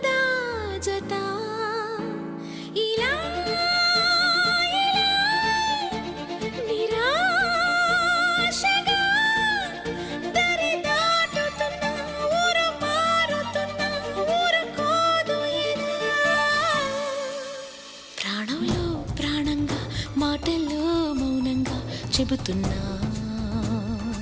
జత. ఇలా నిరాశగా దరి దాటుతున్నా, ఊరు మారుతున్నా, ఊరుకోదు ఇలా. ప్రాణంలో ప్రాణంగా మాటల్లో మౌనంగా చెబుతున్నా,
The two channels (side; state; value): both; identical; correlation 1.00